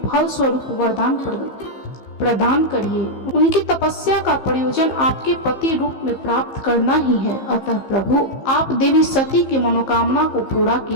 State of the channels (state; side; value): late; right; 15 ms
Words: फल स्वरूप वरदान प्रदान करिए। उनकी तपस्या का प्रयोजन आपके पति रूप में प्राप्त करना ही है। अतः प्रभु, आप देवी सती की मनोकामना को पूरा